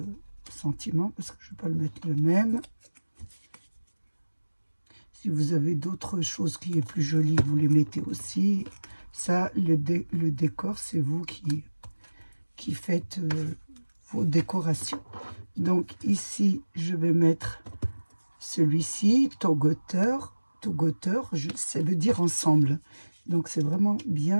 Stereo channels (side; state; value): both; inverted; correlation -1.00